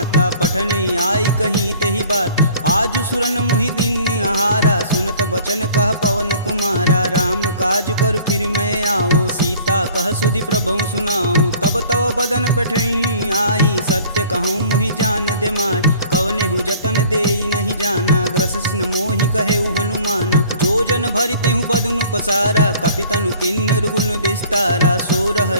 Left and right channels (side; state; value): both; inverted; correlation -0.51